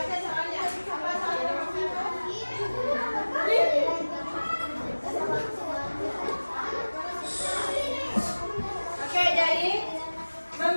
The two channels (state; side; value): inverted; both; correlation -1.00